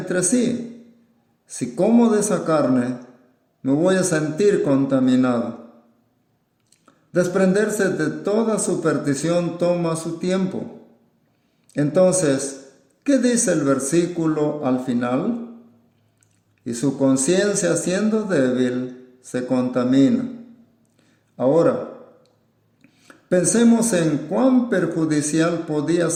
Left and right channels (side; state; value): both; identical; correlation 1.00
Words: sí, si como de esa carne, me voy a sentir contaminado. Desprenderse de toda superstición toma su tiempo. Entonces, ¿Qué dice el versículo al final? Y su conciencia, siendo débil, se contamina. Ahora, pensemos en cuán perjudicial podía